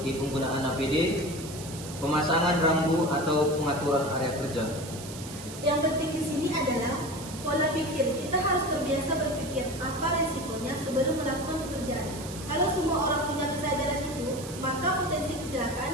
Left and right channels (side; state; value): right; noise; hiss, 13 dB below the sound